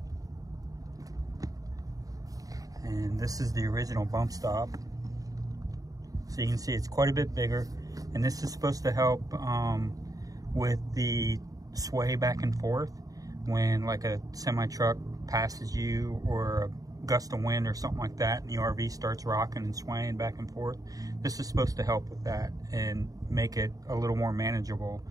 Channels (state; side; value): late; left; 0.17 ms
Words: And this is the original bump stop, so you can see it's quite a bit bigger, and this is supposed to help with the sway back and forth when like a semi truck passes you, or a gust of wind or something like that, and the RV starts rocking and swaying back and forth. This is supposed to help with that and make it a little more manageable